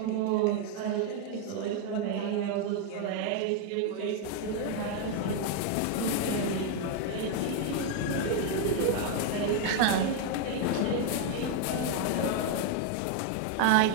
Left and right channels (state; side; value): different; both; correlation 0.01